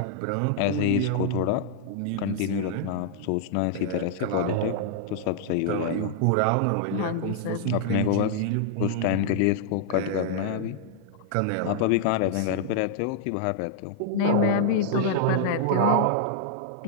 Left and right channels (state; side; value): different; both; correlation -0.01